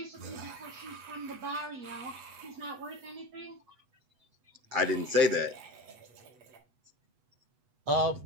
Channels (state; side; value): late; left; 8.1 ms